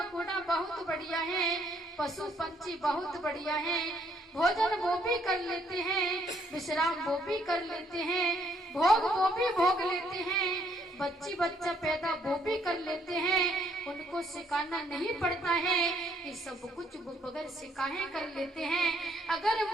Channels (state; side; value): normal; both; correlation 0.68